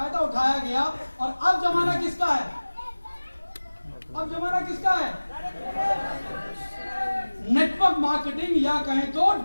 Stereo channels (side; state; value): both; inverted; correlation -1.00